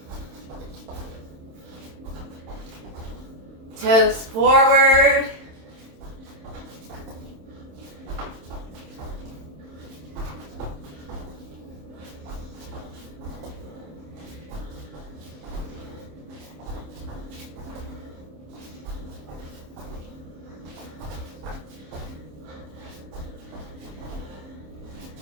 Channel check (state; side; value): late; left; 27 ms